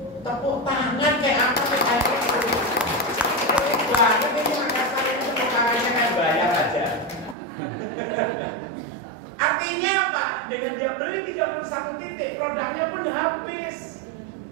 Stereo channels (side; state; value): left; drops out; at 7.4 s